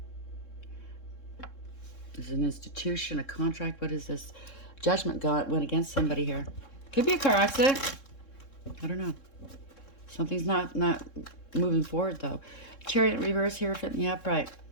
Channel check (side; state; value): right; late; 3.7 ms